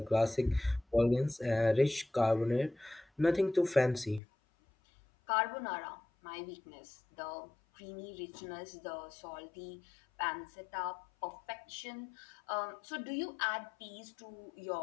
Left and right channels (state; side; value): drops out; right; at 4.2 s